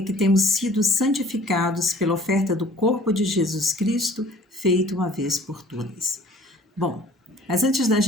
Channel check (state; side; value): normal; both; correlation 0.51